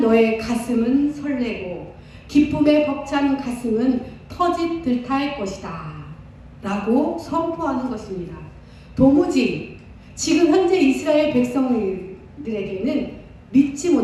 가슴은 설레고 기쁨에 벅찬 가슴은 터짓 듯할 것이다 라고 선포하는 것입니다. 도무지 지금 현재 이스라엘 백성들에게는 믿지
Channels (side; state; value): both; identical; correlation 1.00